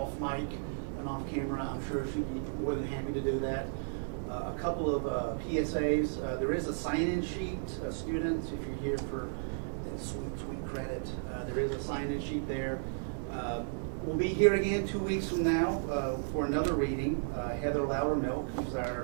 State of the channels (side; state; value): left; silent; digital silence